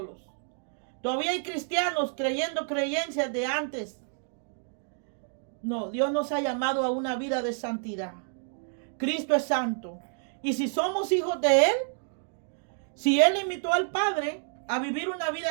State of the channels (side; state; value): left; silent; digital silence